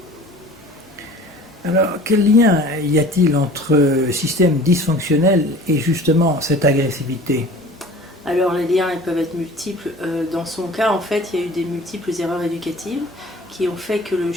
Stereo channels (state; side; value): normal; both; correlation 0.44